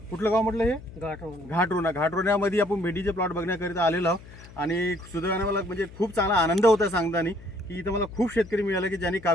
कुठलं गाव म्हटलं हे घाटरोण्यामध्ये आपण भेंडीचे प्लॉट बघण्याकरिता आलेलो आहोत आणि सुदैवाने मला म्हणजे खूप चांगला आनंद होता सांगताना की इथं मला खूप शेतकरी मिळाले की ज्यांनी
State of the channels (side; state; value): left; noise; hum, 18 dB below the sound